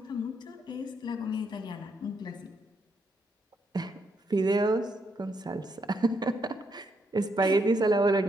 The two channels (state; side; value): normal; both; correlation 0.77